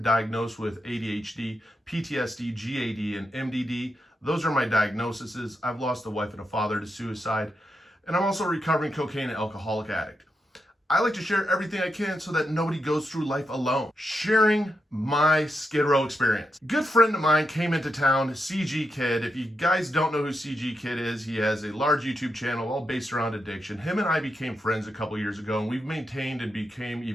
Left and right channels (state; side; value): normal; both; correlation 0.85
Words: diagnosed with ADHD, PTSD, GAD, and MDD. Those are my diagnoses. I've lost a wife and a father to suicide. And I'm also a recovering cocaine and alcoholic addict. I like to share everything I can so that nobody goes through life alone. Sharing my Skid Row experience. Good friend of mine came into town, CG Kid. If you guys don't know who CG Kid is, he has a large YouTube channel all based around addiction. Him and I became friends a couple years ago, and we've maintained and became